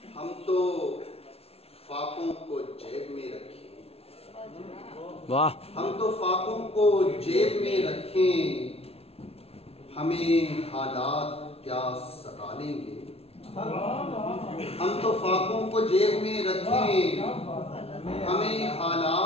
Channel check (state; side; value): late; right; 0.29 ms